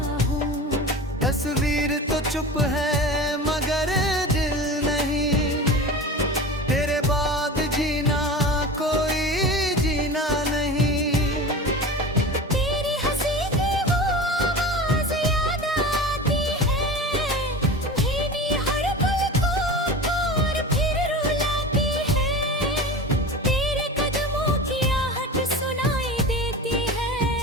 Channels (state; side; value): normal; both; correlation 0.32